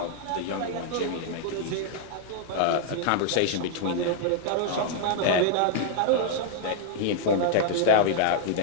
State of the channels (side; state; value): both; different; correlation -0.01